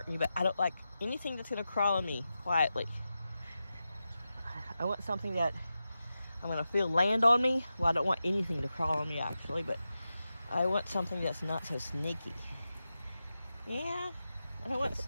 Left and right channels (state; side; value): inverted; both; correlation -0.91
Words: me, but I don't like anything that's going to crawl on me quietly. I want something that I'm going to feel land on me. Well, I don't want anything to crawl on me, actually, but I want something that's not so sneaky. Yeah, I don't want